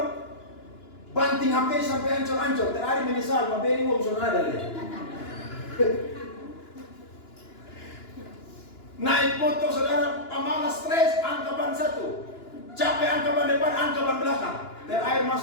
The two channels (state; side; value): late; right; 2.9 ms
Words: Banting HP sampai hancur-hancur. Terakhir menyesal, mabeli wong sonada le. Naik motor, saudara, pamalas stres, angka ban 1. Capek angka ban depan, angka ban belakang. Terakhir